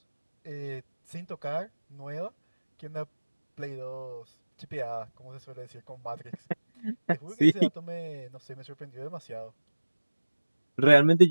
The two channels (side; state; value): both; inverted; correlation -1.00